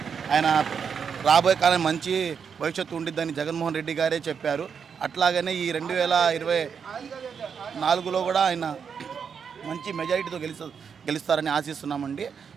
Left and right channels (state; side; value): quieter; left; 6.7 dB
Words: ఆయన రాబోయే కాలం మంచి భవిష్యత్తు ఉండిద్దని జగన్మోహన్ రెడ్డి గారే చెప్పారు. అట్లాగనే ఈ 2024లో కూడా ఆయన మంచి మెజారిటీతో గెలుస్తారని ఆశిస్తున్నామండి.